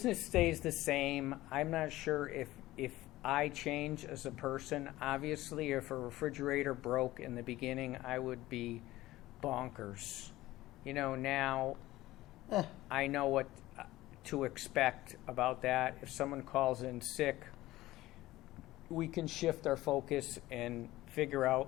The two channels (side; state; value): right; quieter; 16.9 dB